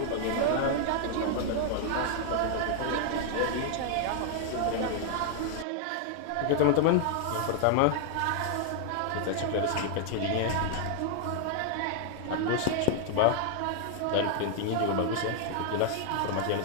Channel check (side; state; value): both; different; correlation 0.00